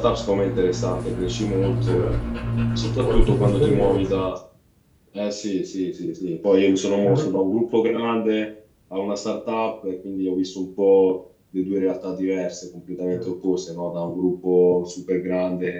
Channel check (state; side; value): identical; both; correlation 1.00